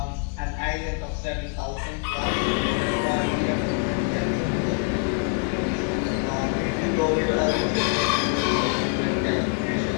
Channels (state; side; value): quieter; right; 34.7 dB